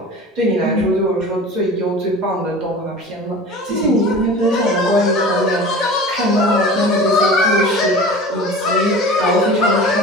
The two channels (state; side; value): normal; both; correlation 0.38